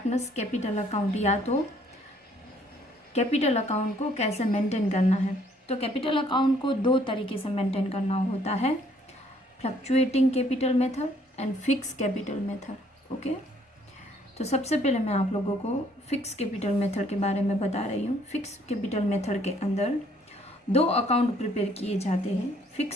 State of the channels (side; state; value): both; normal; correlation 0.63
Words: capital account, या तो कैपिटल अकाउंट को कैसे मेंटेन करना है। तो कैपिटल अकाउंट को दो तरीके से मेंटेन करना होता है, fluctuating capital method and fix capital method. Okay, तो सबसे पहले मैं आप लोगों को फिक्स कैपिटल मेथड के बारे में बता रही हूँ। फिक्स कैपिटल मेथड के अंदर दो अकाउंट प्रिपेयर किए जाते हैं।